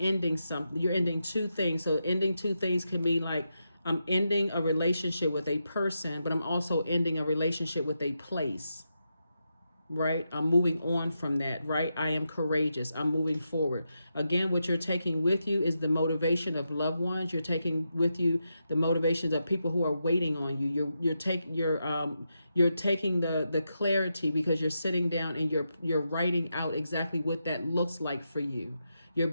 something. You're ending two things. So ending two things can be like, I'm ending a relationship with a person, but I'm also ending a relationship with a place. Right? I'm moving on from that, right? I am courageous. I'm moving forward. Again, what you're taking with you is the motivation of loved ones. You're taking with you the motivations of people who are waiting on you. You're taking the clarity, because you're sitting down and you're writing out exactly what that looks like for you. You're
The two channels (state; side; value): inverted; both; correlation -0.86